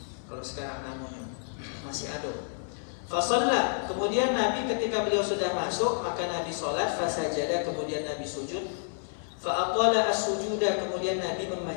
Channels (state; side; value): silent; right; 56 dB below the other